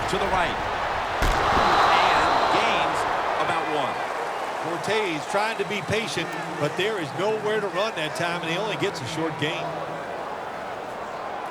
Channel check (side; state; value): both; identical; correlation 1.00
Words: to the right. And gains about 1. Fortes trying to be patient, but there is nowhere to run that time, and he only gets a short gain.